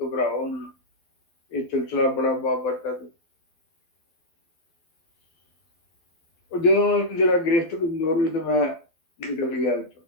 ਨਾ, ਇਹ ਸਿਲਸਿਲਾ ਬੜਾ ਬਾਬਰਕਤ। ਉਹ ਜਦੋਂ ਜਿਹੜਾ ਗ੍ਰਿਫਤ ਕਮਜ਼ੋਰ ਹੋਈ ਤੇ ਮੈਂ ਨਿਕਲ ਗਿਆ ਵਿੱਚੋਂ,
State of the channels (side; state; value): right; late; 12 ms